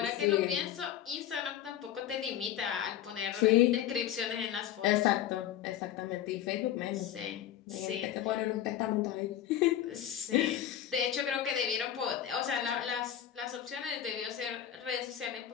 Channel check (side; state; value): right; quieter; 11.0 dB